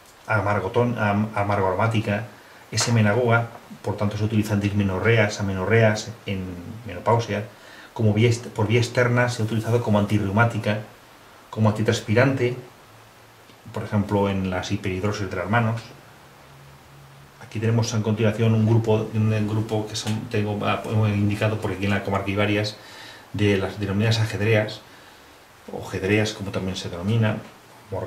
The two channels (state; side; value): identical; both; correlation 1.00